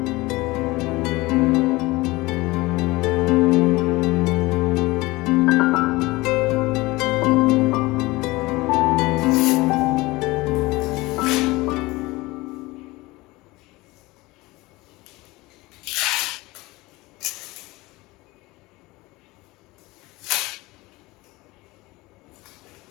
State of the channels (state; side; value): quieter; right; 21.3 dB